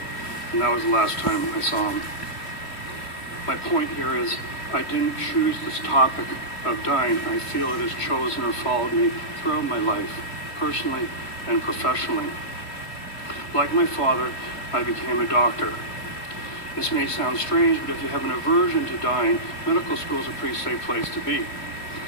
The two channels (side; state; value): right; late; 2.8 ms